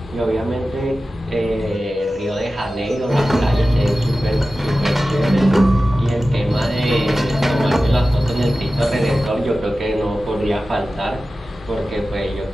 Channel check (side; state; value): both; normal; correlation 0.95